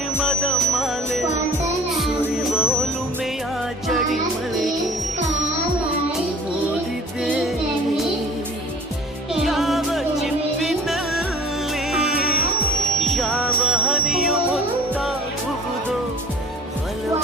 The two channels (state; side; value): normal; both; correlation 0.47